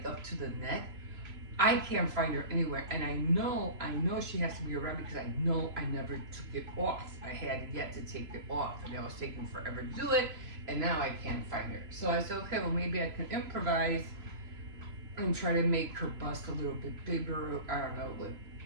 up to the neck. I can't find her anywhere, and I know she has to be around because I know I never took it off. I had yet to take it off, and I was taking forever to do it, and now I can't find her. So I said, okay, well maybe I can improvise and try to make her bust a little bit bigger. I don't know, with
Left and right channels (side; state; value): left; late; 3.0 ms